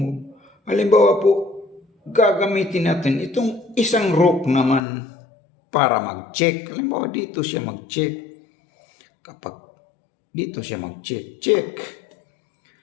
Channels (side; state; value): right; drops out; at 4.8 s